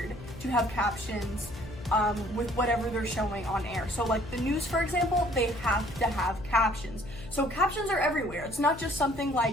to have captions with whatever they're showing on air. So like the news, for example, they have to have captions. So captions are everywhere. It's not just something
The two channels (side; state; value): left; noise; hum, 14 dB below the sound